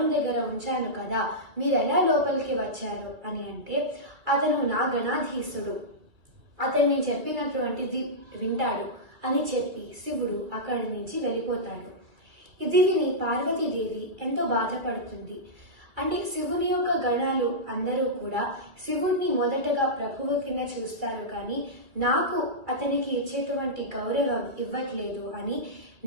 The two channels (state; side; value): late; left; 2.5 ms